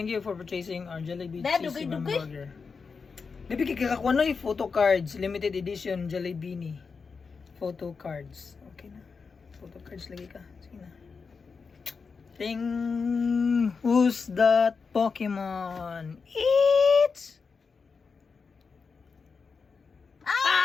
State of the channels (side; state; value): right; quieter; 5.1 dB